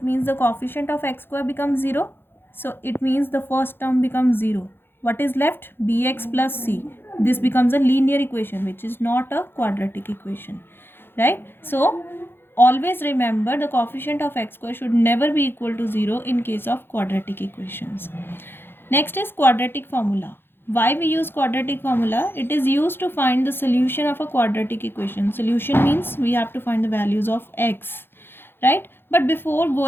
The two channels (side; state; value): right; late; 0.10 ms